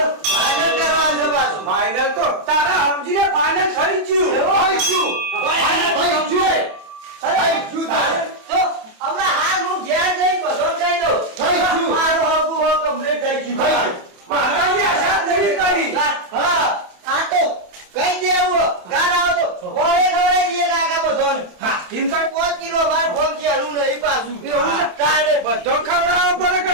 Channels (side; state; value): left; late; 27 ms